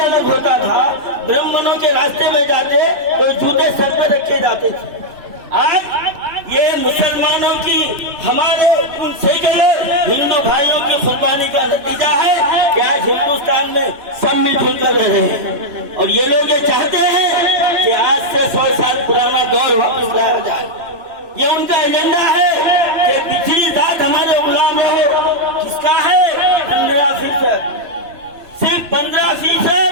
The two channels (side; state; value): left; late; 3.0 ms